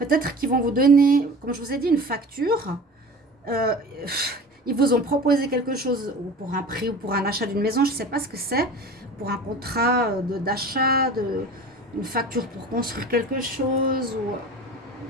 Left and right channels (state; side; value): normal; both; correlation 0.38